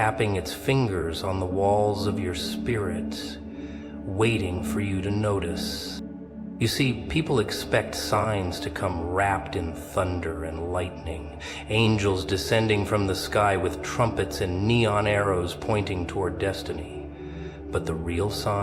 its fingers on the walls of your spirit, waiting for you to notice. You see, people expect signs to come wrapped in thunder and lightning, angels descending from the sky with trumpets and neon arrows pointing toward destiny. But the real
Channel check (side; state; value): both; identical; correlation 1.00